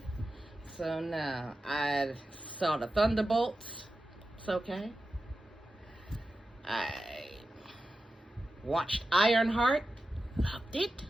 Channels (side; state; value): both; normal; correlation 0.92